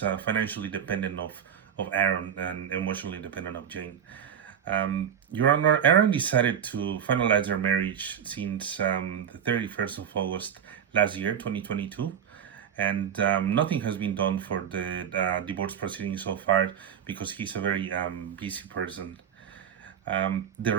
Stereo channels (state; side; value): quieter; left; 8.6 dB